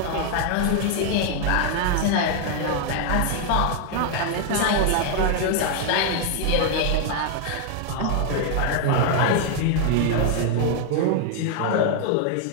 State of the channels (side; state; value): both; different; correlation 0.00